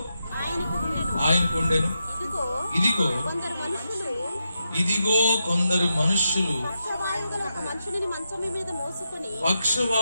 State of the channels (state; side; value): inverted; both; correlation -0.86